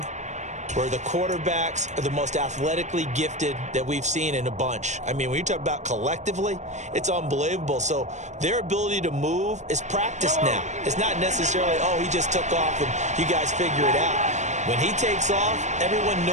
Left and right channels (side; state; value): left; late; 0.34 ms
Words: where the quarterbacks are the most athletically gifted that we've seen in a bunch. I mean, when you talk about collectively, it's unbelievable. So their ability to move is practiced now. It's not necessarily, oh, he just took off and you guys figure it out. When he takes off, everyone